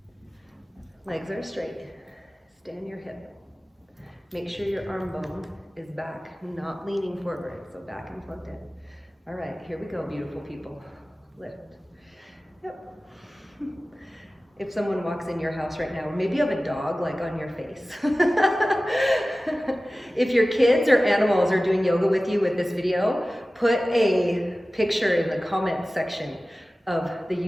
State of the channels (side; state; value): both; normal; correlation 0.96